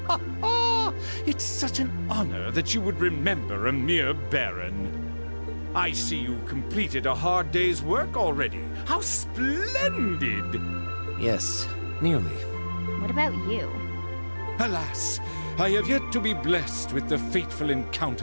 It's such an honor that you would remember a mere baron. I see you've completed a hard day's work already. How splendid! Yes, nearly. What about you? Alas, I have yet to be blessed with the fateful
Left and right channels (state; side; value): inverted; both; correlation -1.00